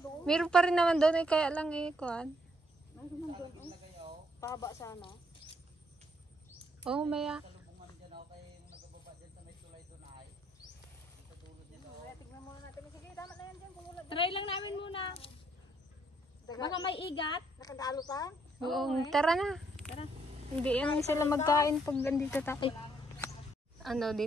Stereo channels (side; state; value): both; normal; correlation 0.71